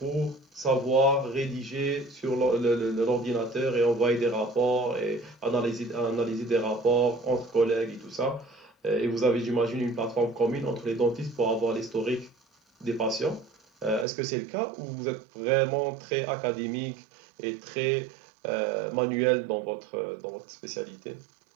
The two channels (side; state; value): left; drops out; at 14.1 s